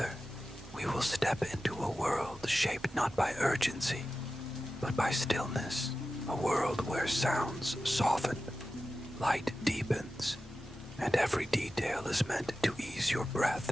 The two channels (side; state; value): both; normal; correlation 0.93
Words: we will step into a world shaped not by urgency, but by stillness, a world where sounds soften, light deepens, and every detail is meant to ease your breath